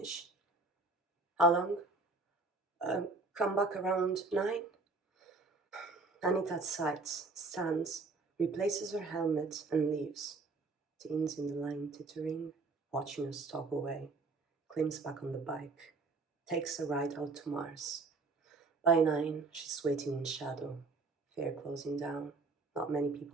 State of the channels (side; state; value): left; quieter; 3.7 dB